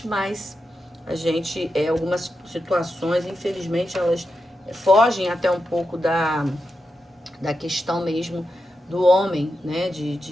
mas algumas situações, infelizmente, elas fogem até um pouco da questão mesmo do homem, né?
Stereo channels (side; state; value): both; normal; correlation 0.88